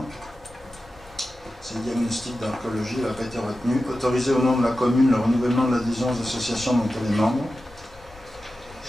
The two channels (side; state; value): both; normal; correlation 0.93